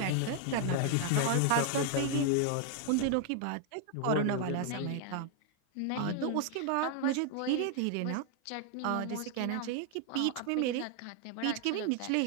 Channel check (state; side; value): different; both; correlation 0.00